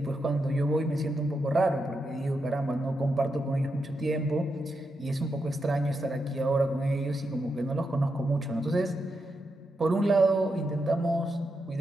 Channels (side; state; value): both; normal; correlation 0.85